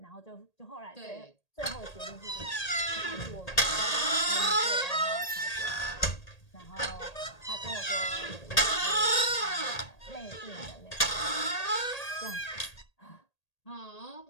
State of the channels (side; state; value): right; late; 1.8 ms